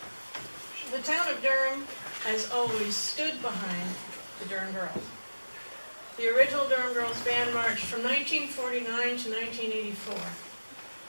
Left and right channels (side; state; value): both; inverted; correlation -1.00